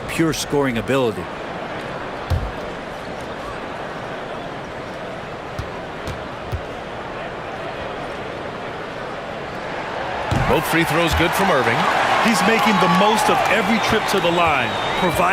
pure scoring ability. Both free throws good from Irving. He's making the most of every trip to the line,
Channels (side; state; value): both; identical; correlation 1.00